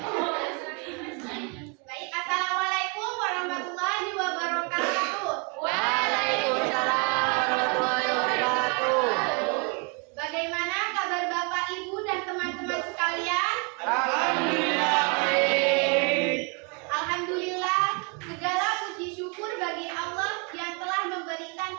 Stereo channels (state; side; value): quieter; left; 34.7 dB